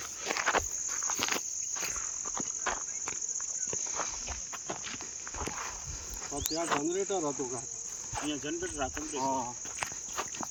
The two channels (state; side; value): identical; both; correlation 1.00